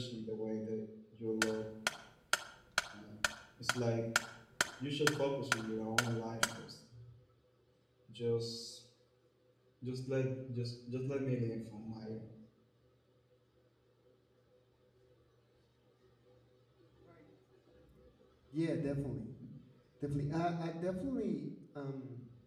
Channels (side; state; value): both; identical; correlation 1.00